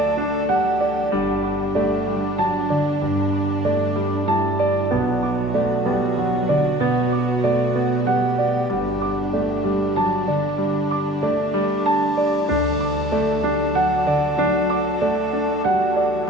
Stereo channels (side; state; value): both; normal; correlation 0.49